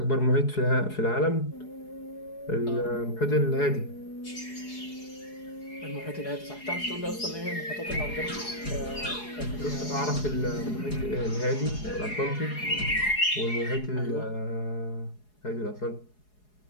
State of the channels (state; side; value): late; right; 4.8 ms